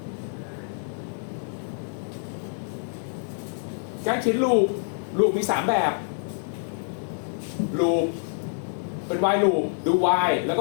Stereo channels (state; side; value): silent; right; digital silence